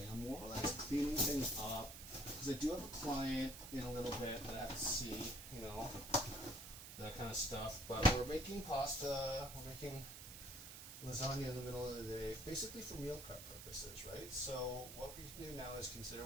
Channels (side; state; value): right; noise; hiss, 11 dB below the sound